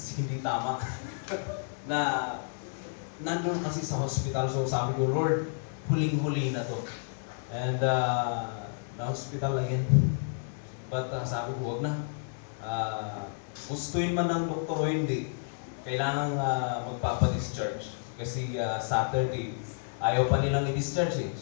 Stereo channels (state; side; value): silent; right; digital silence